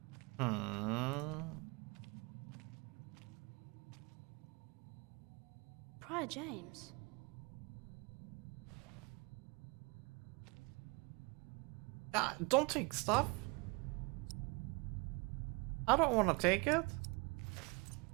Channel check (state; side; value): quieter; left; 28.4 dB